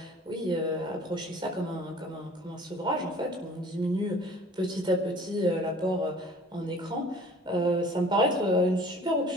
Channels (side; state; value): both; normal; correlation 0.48